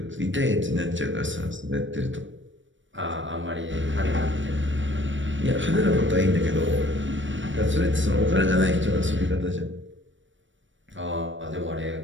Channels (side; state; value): left; late; 0.55 ms